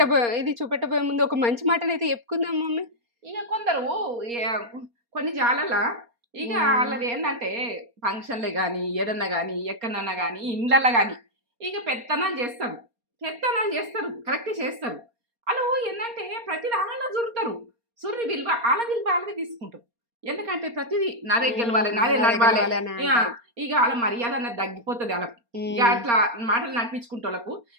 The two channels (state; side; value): late; left; 4.3 ms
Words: ఇది చూపెట్టబోయే ముందు ఒక మంచి మాటనైతే చెప్పుకుందాం మమ్మీ. ఇక కొందరు కొన్ని జాలలా ఇక వాళ్ళది ఏంటంటే ఫంక్షన్లే కానీ ఏదన్నా కానీ ఎక్కడన్నా కానీ ఇండ్లల్లో కానీ ఇక పెత్తనాలు చేస్తారు కరెక్ట్ చేస్తారు. వాళ్ళు ఏంటంటే ప్రతి దానిలో జురుతారు. సుర్రి విలువ వాళ్ళకి తీసుకుంటారు. ఎందుకంటే ప్రతిదీ నాదే గెలవాలి, నాదే నడవాలి. ఇక వాళ్ళ మర్యాద అన్నది తగ్గిపోతుంది వాళ్ళకు. ఇక అట్లా మాటలు నడిపించుకుంటే వాళ్ళకు